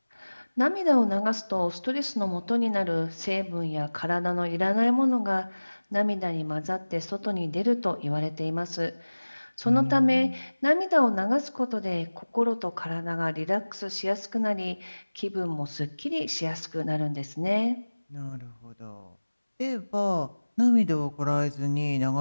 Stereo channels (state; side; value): inverted; both; correlation -1.00